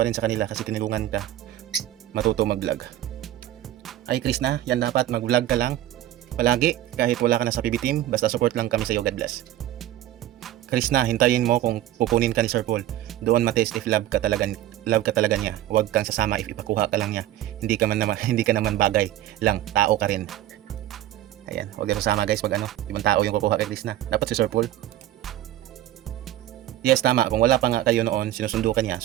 rin sa kanila kasi tinulungan ka matuto mag-vlog. Ay Chris na, yan dapat mag-vlog ka lang palagi kahit wala ka na sa PB team. Basta support lang kami sa iyo, God bless. Chris na, hintayin mo kung pupunin ka ni Sir Paul. Doon matest if love ka talaga niya. Huwag kang sasama if ipakuha ka lang niya. Hindi ka naman bagay lang, tao ka rin. Ayan, huwag na sasama guys pag ibang tao yung kukuha kay Chris na. Dapat si Sir Paul. Yes, tama. Kung wala pa nga kayo noon, sinusundo ka niya.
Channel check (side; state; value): left; quieter; 13.6 dB